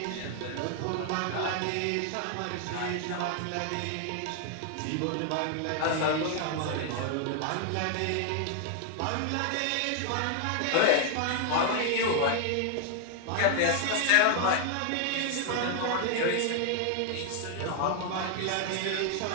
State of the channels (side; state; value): both; different; correlation 0.00